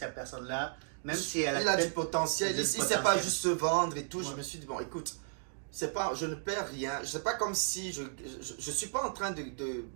personne-là, même si elle il a du potentiel, il ne sait pas juste se vendre et tout. Ouais. Je me suis dit, bon, écoute, je ne perds rien. C'est pas comme si je suis pas en train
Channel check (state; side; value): silent; left; digital silence